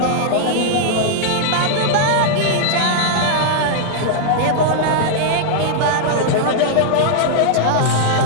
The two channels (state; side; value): different; both; correlation -0.01